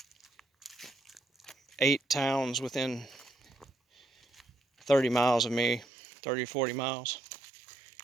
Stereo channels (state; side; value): drops out; left; at 5.9 s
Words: 8 towns within 30 miles of me, 30 or 40 miles,